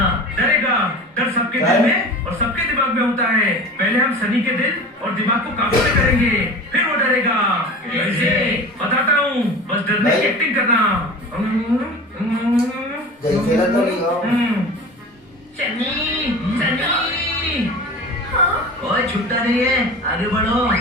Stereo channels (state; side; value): normal; both; correlation 0.35